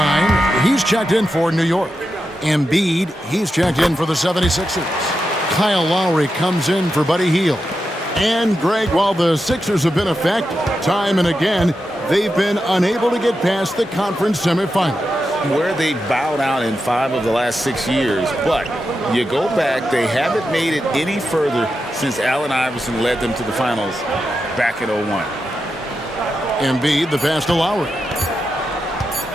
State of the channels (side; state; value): both; normal; correlation 0.88